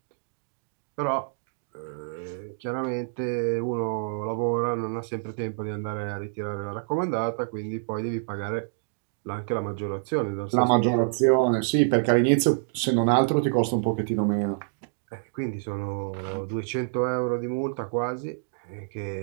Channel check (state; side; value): silent; left; digital silence